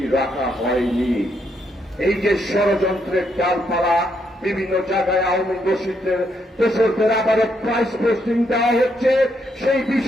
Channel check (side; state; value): both; normal; correlation 0.76